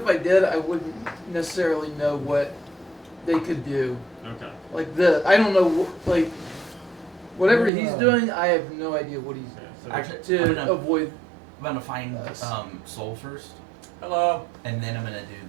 I did, I wouldn't necessarily know what they could do. Okay. Like this, I don't know. Like whatever he's doing, I have no idea what he's Yeah, so Actually, I'm to gonna, avoid. I'm gonna find Yes. Soul first, Hello. and then I'm gonna do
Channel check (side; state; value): left; drops out; at 7.7 s